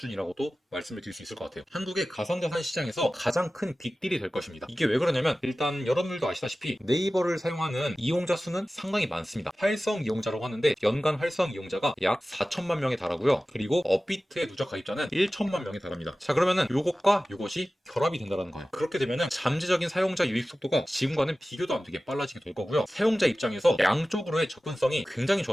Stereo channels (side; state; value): both; normal; correlation 0.96